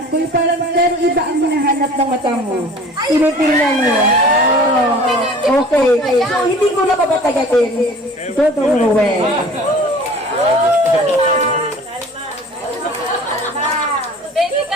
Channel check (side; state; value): both; normal; correlation 0.45